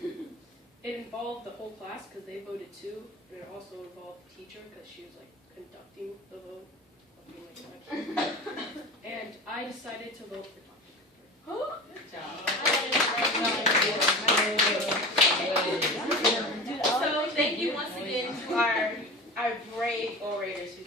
It involved the whole class because they voted too, and it also involved the teacher because she was like conducting the vote. And I decided to vote for Dr. Pepper. Good job. So thank you once again to our brave orators who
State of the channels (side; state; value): both; normal; correlation 0.32